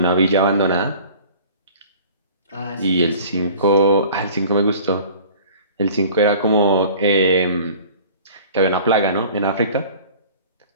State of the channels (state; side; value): inverted; both; correlation -0.46